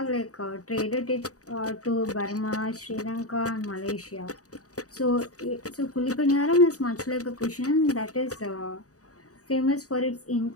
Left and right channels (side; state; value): right; late; 0.66 ms